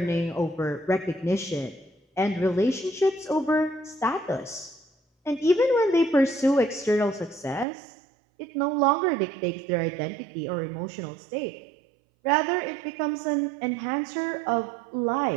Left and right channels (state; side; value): drops out; left; at 7.7 s